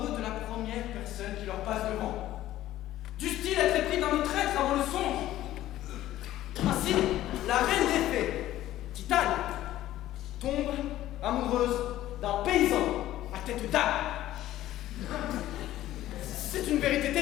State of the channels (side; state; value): right; quieter; 14.1 dB